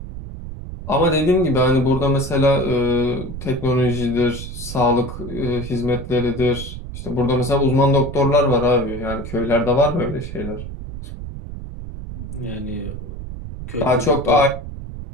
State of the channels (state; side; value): noise; right; rumble, 9 dB below the sound